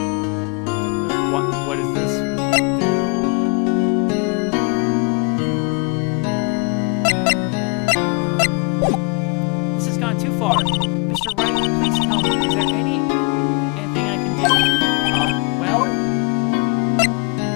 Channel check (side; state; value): right; quieter; 33.9 dB